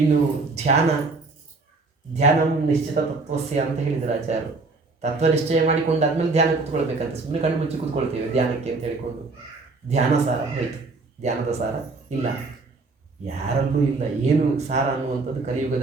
ಧ್ಯಾನ ನಿಶ್ಚಿತ ತತ್ವಸ್ಯ ಅಂತ ಹೇಳಿದರು ಆಚಾರ್ಯರು. ತತ್ವ ನಿಶ್ಚಯ ಮಾಡಿಕೊಂಡಾದ್ಮೇಲೆ ಧ್ಯಾನ ಕೂತ್ಕೊಳ್ಬೇಕಂತ. ಸುಮ್ಮನೆ ಕಣ್ಣು ಮುಚ್ಚಿ ಕೂತ್ಕೊಳ್ತೇವೆ ಧ್ಯಾನಕ್ಕೆ ಅಂತ ಹೇಳಿಕೊಂಡು. ಧ್ಯಾನ ಸಾರ ಹೋಯಿತು, ಧ್ಯಾನದ ಸಾರ ಇಲ್ಲ, ಯಾರಲ್ಲೂ ಇಲ್ಲ. ಏನು ಸಾರ ಅನ್ನುವಂಥದ್ದು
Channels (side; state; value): left; quieter; 3.7 dB